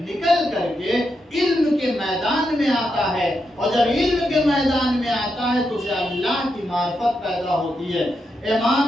کر کے علم کے میدان میں آتا ہے، اور جب علم کے میدان میں آتا ہے تو اسے اللہ کی معرفت پیدا ہوتی ہے.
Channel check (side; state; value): both; normal; correlation 0.84